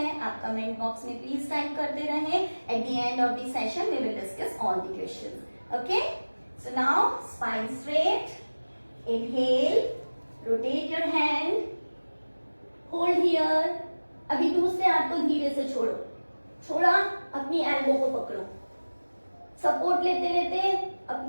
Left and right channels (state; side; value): inverted; both; correlation -1.00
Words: आप कमेंट बॉक्स में प्लीज टाइप करते रहें। At the end of the session we will discuss all the questions. Okay, so now spine straight, inhale, rotate your hand, hold here. अभी दूसरे हाथ को धीरे से छोड़ो, छोड़ा, अपनी एल्बो को पकड़ो, सपोर्ट लेते लेते